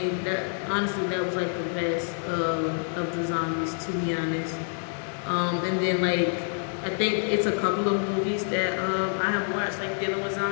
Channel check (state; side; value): silent; right; 56 dB below the other